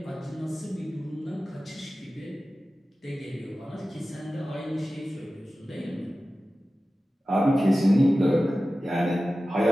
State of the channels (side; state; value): both; normal; correlation 0.95